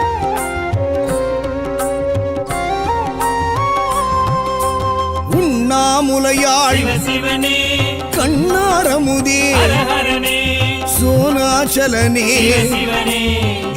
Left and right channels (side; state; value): both; identical; correlation 1.00